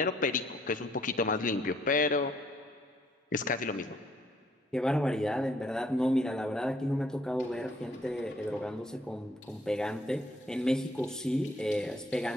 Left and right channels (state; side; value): normal; both; correlation 0.65